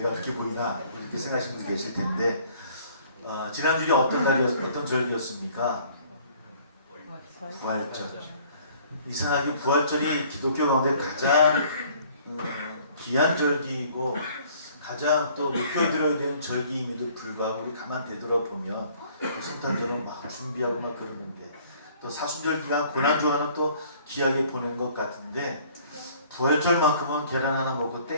그렇게 보이나 이렇게 생각하시는 분들 계실 텐데 지난주에 어떤 절기였습니까? 부활절. 이상하게 부활절이 기독교 가운데 가장 귀한 절기이고 가장 또 높여드려야 되는 절기임에도 불구하고 우리 가만 되돌아보면 성탄절은 막 준비하고 막 그러는데 또 사순절 기간 고난주간은 또 귀하게 보낸 것 같은데 부활절만큼은 계란 하나 먹고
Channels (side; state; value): both; inverted; correlation -0.56